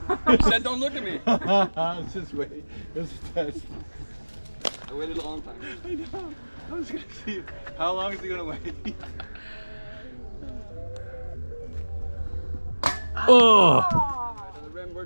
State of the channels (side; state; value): both; inverted; correlation -1.00